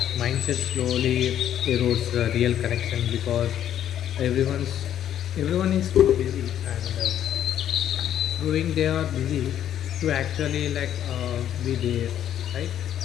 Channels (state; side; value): quieter; right; 10.6 dB